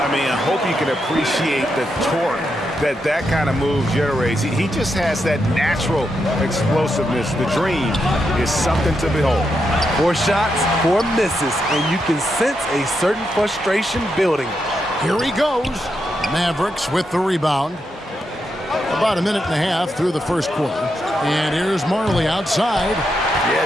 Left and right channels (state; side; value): normal; both; correlation 0.83